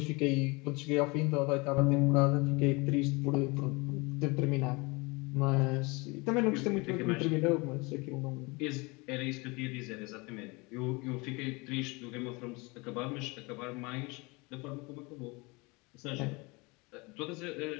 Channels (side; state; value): right; quieter; 26.5 dB